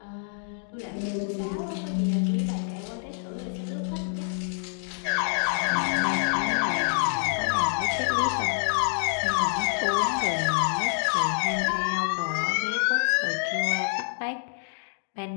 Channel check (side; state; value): right; silent; 60 dB below the other